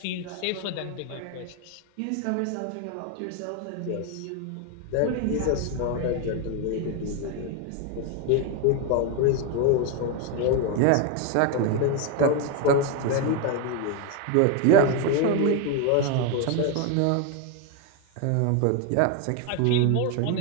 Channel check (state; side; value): different; both; correlation 0.01